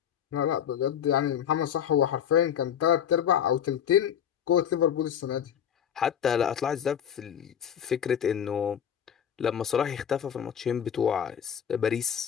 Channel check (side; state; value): right; quieter; 8.9 dB